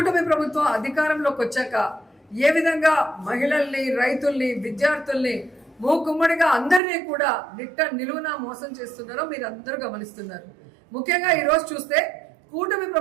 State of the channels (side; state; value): left; drops out; at 6.8 s